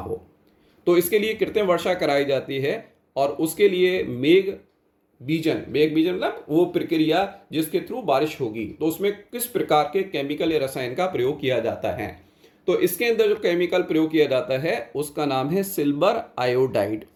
तो इसके लिए कृत्रिम वर्षा कराई जाती है और उसके लिए मेघ बीजन मतलब वो प्रक्रिया जिसके थ्रू बारिश होगी, तो उसमें किस प्रकार के केमिकल या रसायन का प्रयोग किया जाता है। तो इसके अंदर जो केमिकल प्रयोग किया जाता है उसका नाम है सिल्वर आयोडाइड।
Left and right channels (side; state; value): both; identical; correlation 1.00